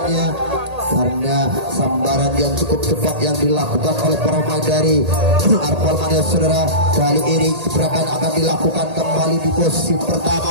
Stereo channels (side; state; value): left; late; 1.8 ms